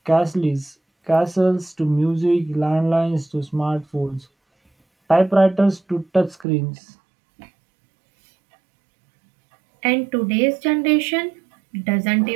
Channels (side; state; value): left; drops out; at 6.5 s